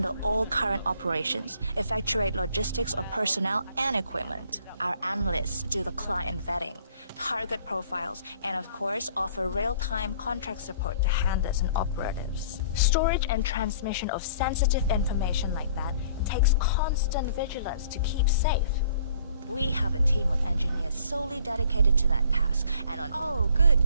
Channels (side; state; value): both; inverted; correlation -0.55